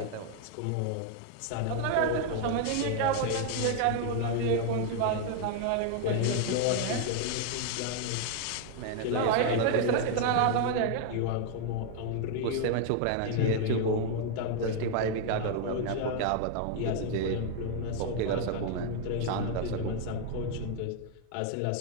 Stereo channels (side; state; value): both; different; correlation 0.00